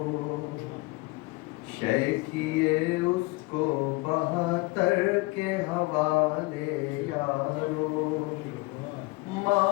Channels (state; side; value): quieter; right; 24.0 dB